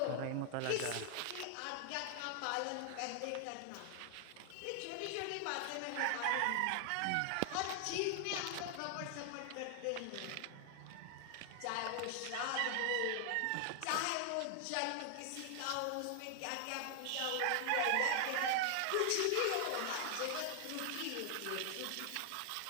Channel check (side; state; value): both; different; correlation 0.00